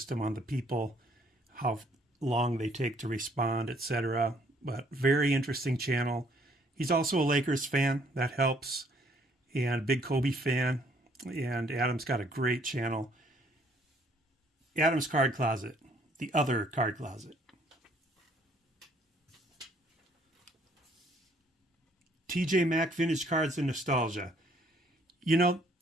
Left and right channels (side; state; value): both; normal; correlation 0.64